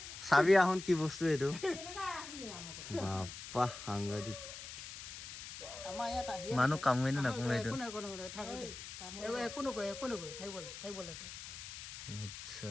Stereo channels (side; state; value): left; noise; hiss, 10 dB below the sound